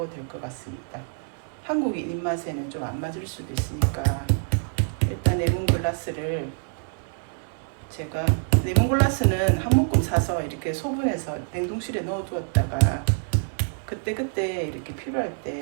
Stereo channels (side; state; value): left; silent; 61 dB below the other